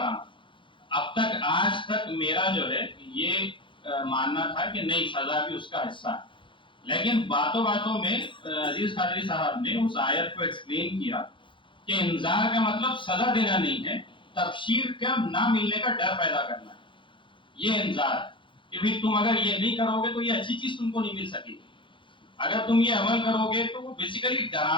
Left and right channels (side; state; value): right; late; 0.24 ms